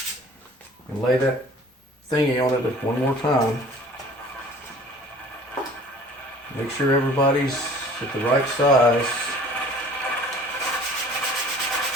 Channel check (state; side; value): normal; both; correlation 0.48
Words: and lay that thingy on it one more time. Make sure everybody's at the right size